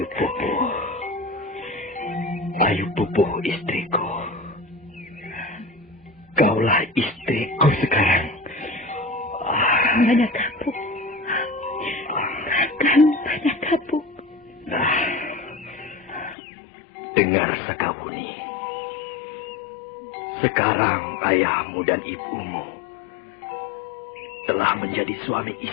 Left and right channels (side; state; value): right; drops out; at 16.4 s